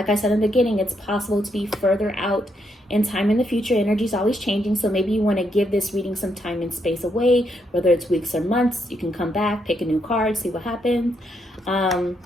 I said in the beginning, it's possible to be further out in time in the future. Energy is always changing. So maybe you want to give this reading some time and space away, whether it's weeks or months. You can come back, pick a new card, see what happens.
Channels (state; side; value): normal; both; correlation 0.78